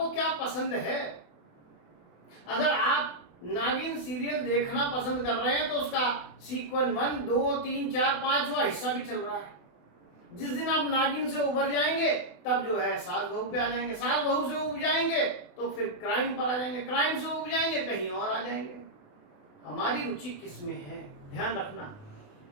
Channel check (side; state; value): right; late; 28 ms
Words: क्या पसंद है। अगर आप नागिन सीरियल देखना पसंद कर रहे हैं तो उसका सीक्वेंस 1, 2, 3, 4, 5वां हिस्सा भी चल रहा है। जिस दिन आप नागिन से उबर जाएंगे तब जो है सास बहू पे आ जाएंगे, सास बहू से उब जाएंगे तो फिर क्राइम पर आ जाएंगे, क्राइम से उब जाएंगे कहीं और आ जाएंगे। हमारी रुचि किस में है? ध्यान रखना,